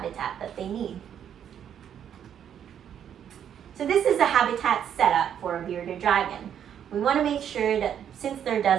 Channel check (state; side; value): quieter; left; 9.1 dB